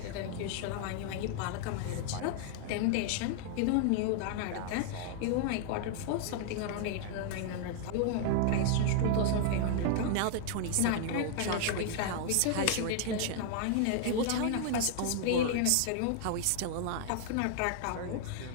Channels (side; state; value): both; different; correlation 0.00